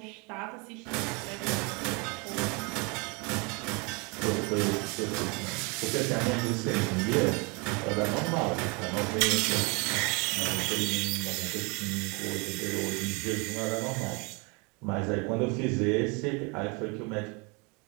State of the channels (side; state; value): left; quieter; 30.1 dB